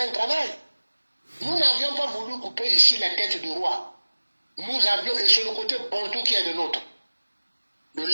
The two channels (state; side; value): inverted; both; correlation -1.00